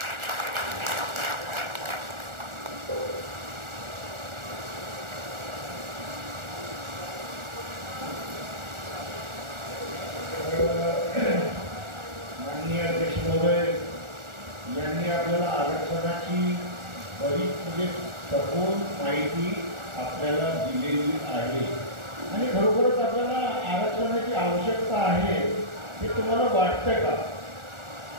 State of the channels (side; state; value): left; late; 1.4 ms